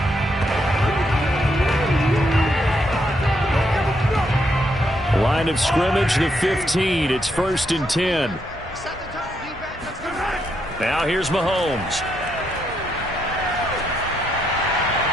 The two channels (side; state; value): both; normal; correlation 0.78